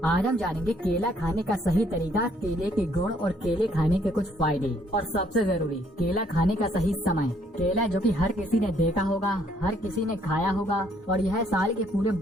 आज हम जानेंगे केला खाने का सही तरीका, केले के गुण और केले खाने के कुछ फायदे और सबसे जरूरी केला खाने का सही समय। केला जो कि हर किसी ने देखा होगा, हर किसी ने खाया होगा और यह साल के पूरे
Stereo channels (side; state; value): both; normal; correlation 0.66